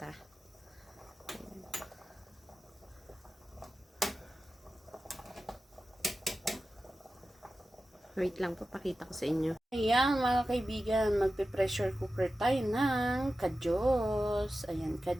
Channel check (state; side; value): normal; both; correlation 0.93